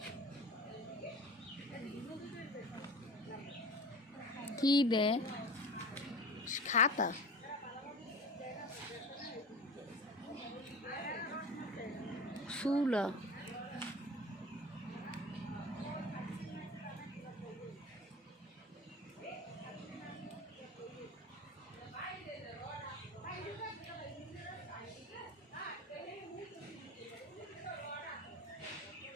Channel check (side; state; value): both; normal; correlation 0.35